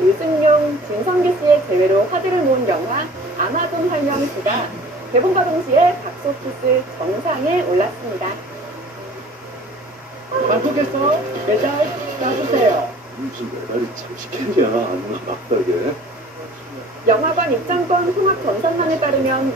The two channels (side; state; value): both; normal; correlation 0.47